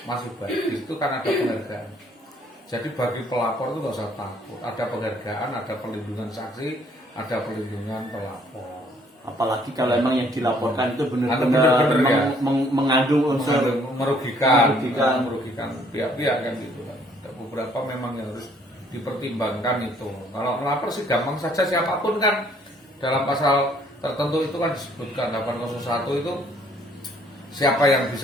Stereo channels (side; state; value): both; normal; correlation 0.63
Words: masih baik. Di situ kan ada penghargaan. Jadi bagi pelapor itu nggak usah takut. Ada penghargaan, ada perlindungan saksi, ada pelindungan pelapor. Apalagi kalau emang yang dilaporkan itu Bener-bener, benar-benar ya. mengandung unsur merugikan pihak-pihak kan gitu kan. Ada beberapa memang yang harus dipertimbangkan itu. Kalau melapor sih gampang saja, siapapun kan dalam pasal tertentu itu kan disebutkan 801 itu siapa yang